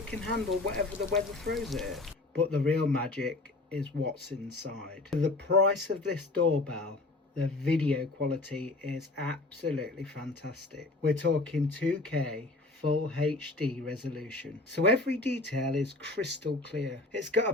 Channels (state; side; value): quieter; right; 3.0 dB